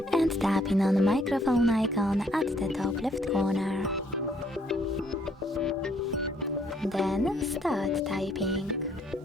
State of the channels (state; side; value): normal; both; correlation 0.66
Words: and tapping on the microphone icon at the top left corner. Then start typing.